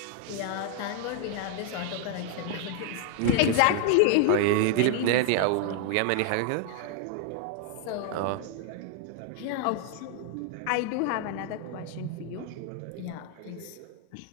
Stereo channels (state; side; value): different; both; correlation 0.00